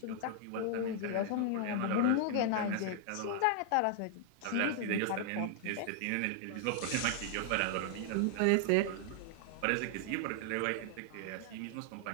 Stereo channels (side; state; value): both; different; correlation 0.00